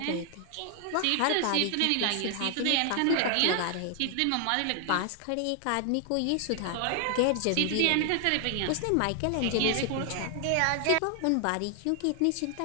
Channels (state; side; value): different; both; correlation 0.00